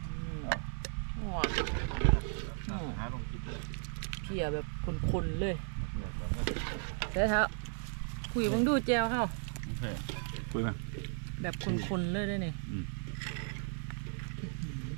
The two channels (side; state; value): left; silent; 54 dB below the other